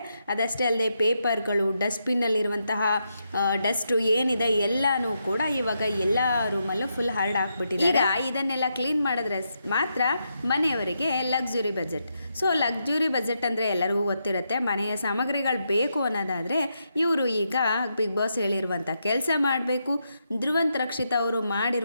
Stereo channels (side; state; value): both; inverted; correlation -0.82